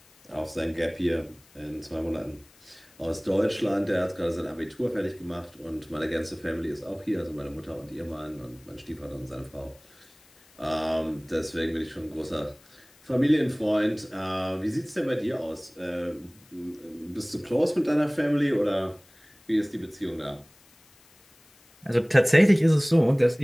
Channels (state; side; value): noise; left; hiss, 28 dB below the sound